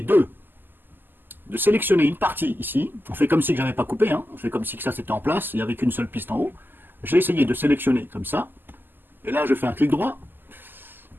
de sélectionner une partie ici. On fait comme si je n'avais pas coupé. Hein, on fait comme si que ça c'était en place. Il n'y avait qu'une seule piste en haut. J'ai essayé de sélectionner comme ça. Et là, je fais un clic droit.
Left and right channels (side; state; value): left; late; 0.092 ms